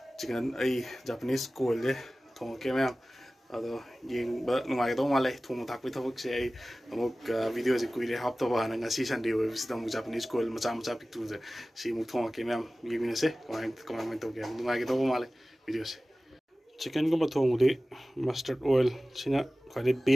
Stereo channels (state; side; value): normal; both; correlation 0.97